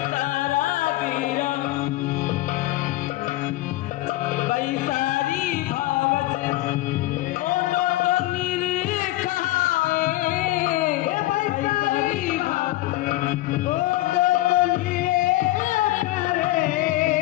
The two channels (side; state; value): right; quieter; 17.3 dB